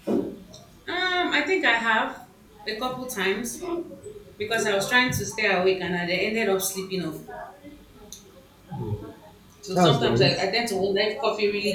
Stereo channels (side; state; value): both; identical; correlation 1.00